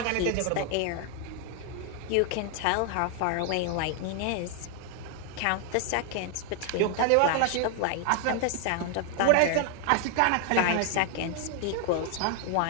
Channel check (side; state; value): both; different; correlation 0.00